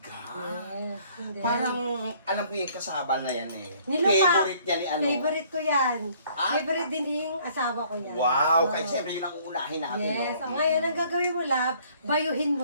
Yes. And then, Parang alam ko yung kasaba na yan eh. nilupak. Favorite niya ni ano. Favorite ko yan. Ah? Favorite din yung asawa ko yan. Wow, Oo. kahit siyempre yun ang uunahin natin. Yes. no? So, ngayon, ang gagawin mo, lab, bayuhin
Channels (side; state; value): both; inverted; correlation -0.59